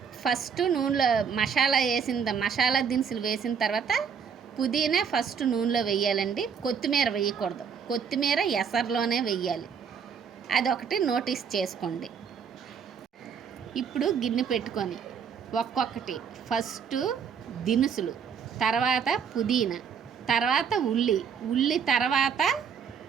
ఫస్ట్ నూనెలో మసాలా దినుసులు వేసిన తర్వాత పుదీనా ఫస్ట్ నూనెలో వేయాలండి. కొత్తిమీర వేయకూడదు. కొత్తిమీర ఎసరులోనే వేయాలి. అదొకటి నోటీస్ చేసుకోండి. ఇప్పుడు గిన్నె పెట్టుకొని ఒక్కొక్కటి ఫస్ట్ దినుసులు, తర్వాత పుదీనా, తర్వాత ఉల్లి తర్వాత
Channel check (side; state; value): left; quieter; 6.9 dB